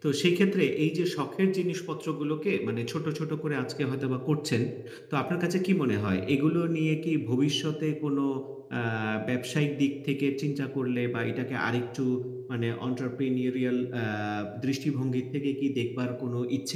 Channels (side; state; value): both; identical; correlation 1.00